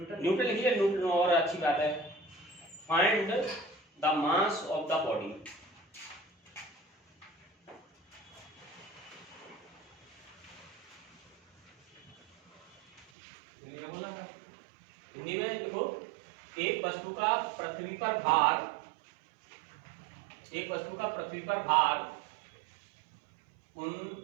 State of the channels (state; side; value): drops out; left; at 13.1 s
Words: न्यूटन लिखिए, न्यूटन और अच्छी बात है। Find the mass of the body, Hindi में देखो, एक वस्तु का पृथ्वी पर भार, एक वस्तु का पृथ्वी पर भार